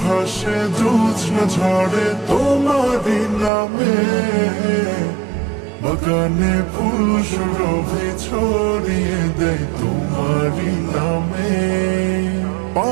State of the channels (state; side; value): drops out; left; at 3.5 s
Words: হাসে, জ্যোৎস্না ঝরে তোমারই নামে, বাগানে ফুল সুরভি ছড়িয়ে দেয় তোমারই নামে।